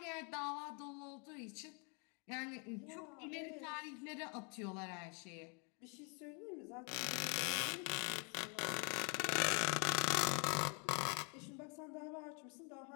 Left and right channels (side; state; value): right; quieter; 35.7 dB